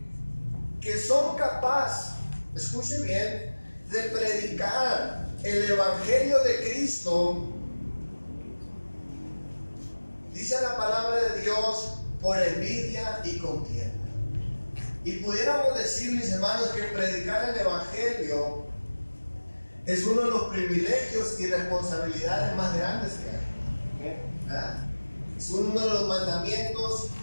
son capaces, escuchen bien, de predicar el evangelio de Cristo, dice la palabra de Dios, por envidia y contienda. Y pudiéramos decir, mis hermanos, que predicar el evangelio es uno de los privilegios y responsabilidades más grandes que hay. ¿Verdad? Es uno de los mandamientos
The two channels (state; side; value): inverted; both; correlation -1.00